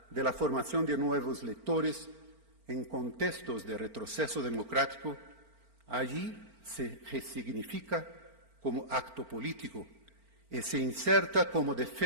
de la formación de nuevos lectores en contextos de retroceso democrático allí se resignifica como acto político y se inserta como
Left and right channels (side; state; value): left; late; 4.4 ms